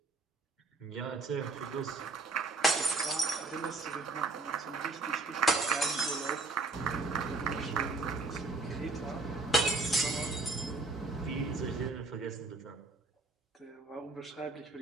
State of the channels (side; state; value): left; quieter; 3.4 dB